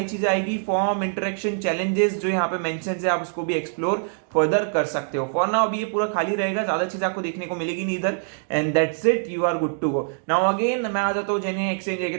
चीजें आएगी, फॉर्म, इंटरेक्शन, चैलेंजेस जो यहाँ पे मेंशन है आप उसको भी एक्सप्लोर फर्दर कर सकते हो। फॉर नाउ अभी ये पूरा खाली रहेगा, ज्यादा चीज आपको देखने को मिलेगी नहीं इधर, and that's it, you are good to go. Now again मैं आ जाता हूँ जेन्युइन एक्सचेंज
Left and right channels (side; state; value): left; silent; digital silence